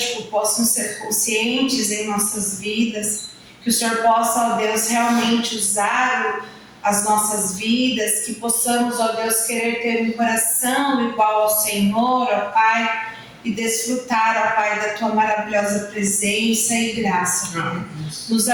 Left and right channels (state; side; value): identical; both; correlation 1.00